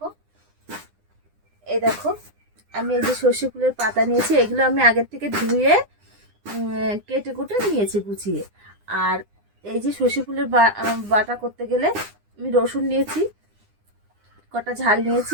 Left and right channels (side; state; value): left; late; 9.8 ms